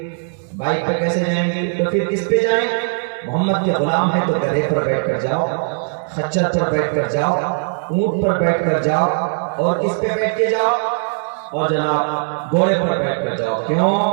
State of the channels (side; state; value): left; silent; digital silence